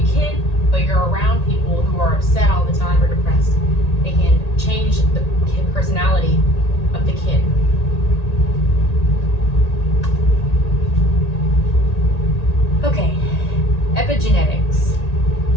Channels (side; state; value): right; late; 1.8 ms